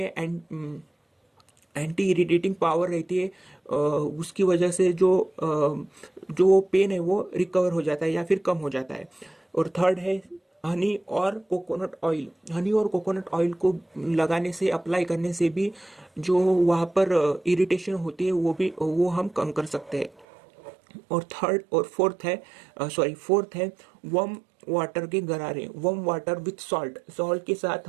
एंटी इरिटेटिंग पावर रहती है। उसकी वजह से जो पेन है वो रिकवर हो जाता है या फिर कम हो जाता है। और थर्ड है हनी और कोकोनट ऑयल। हनी और कोकोनट ऑयल को लगाने से, अप्लाई करने से भी जो वहाँ पर इरिटेशन होती है वो हम कम कर सकते हैं। और फोर्थ है वार्म वाटर के गरारे, warm water with salt, salt के साथ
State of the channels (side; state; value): left; drops out; at 20.2 s